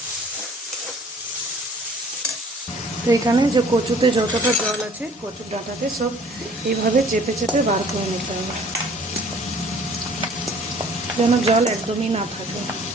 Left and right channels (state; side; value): normal; both; correlation 0.53